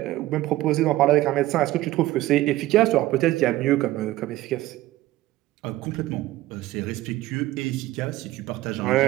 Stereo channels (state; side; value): quieter; left; 16.3 dB